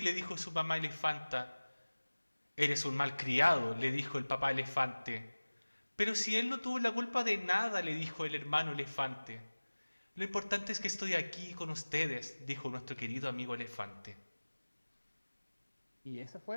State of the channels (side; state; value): both; inverted; correlation -1.00